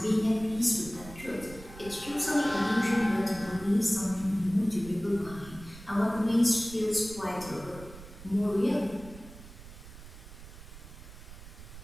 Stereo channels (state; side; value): noise; right; rumble, 16 dB below the sound